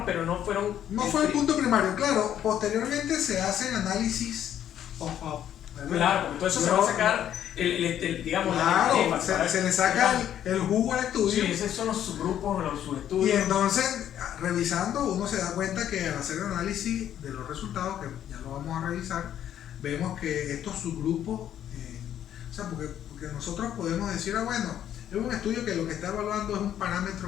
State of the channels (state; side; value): quieter; right; 10.5 dB